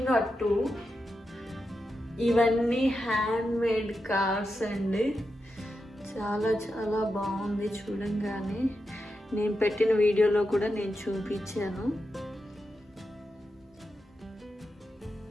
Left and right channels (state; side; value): normal; both; correlation 0.88